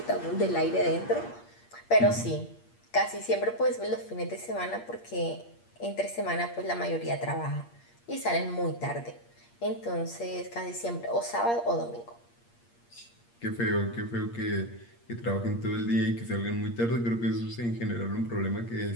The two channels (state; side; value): late; right; 8.5 ms